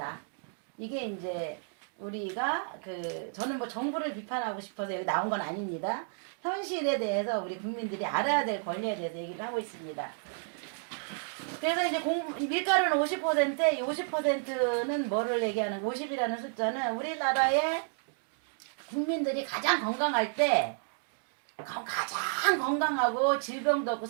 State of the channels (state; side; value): silent; left; 57 dB below the other